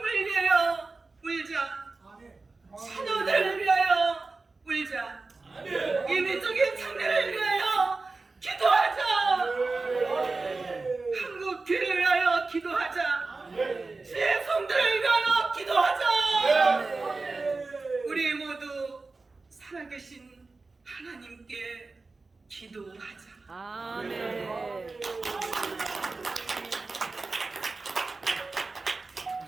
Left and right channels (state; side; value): quieter; left; 3.7 dB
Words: 위하여 울자. 자녀들을 위하여 울자. 이민족의 장래를 위하여 기도하자. 한국 교회를 위하여 기도하자. 주의 성도를 위하여 기도하자. 우리 모두 살아계신 하나님께 기도하자. 아멘.